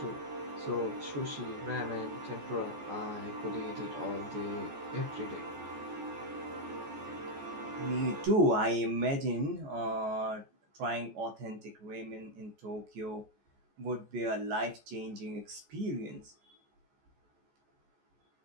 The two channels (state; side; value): late; left; 14 ms